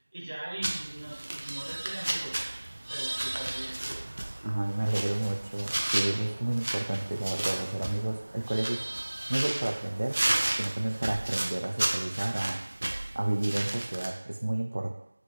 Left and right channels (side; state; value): both; inverted; correlation -1.00